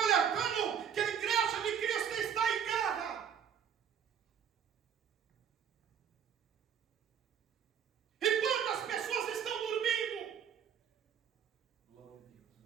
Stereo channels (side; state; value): left; quieter; 8.2 dB